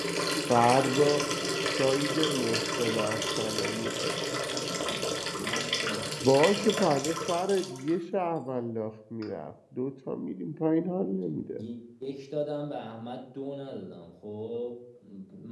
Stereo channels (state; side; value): identical; both; correlation 1.00